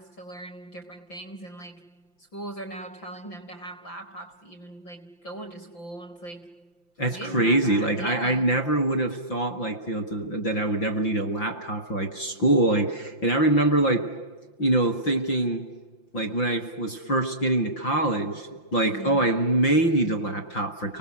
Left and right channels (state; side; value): late; right; 5.8 ms